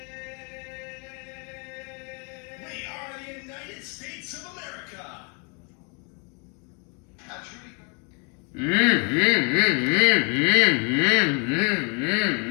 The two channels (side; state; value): right; quieter; 35.6 dB